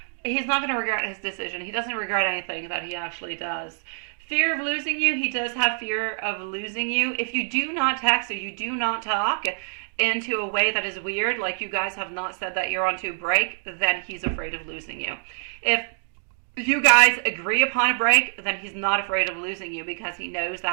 he's not going to regret his decision. He doesn't regret anything that he actually does. Fear of losing you, he does have fear of losing you. If you do not text or you do not talk into a way that is weird, like you guys have not said that you're onto a break, then he's afraid of losing you. If you guys agree upon a break, then he's not afraid of losing you because he knows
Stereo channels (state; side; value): silent; left; digital silence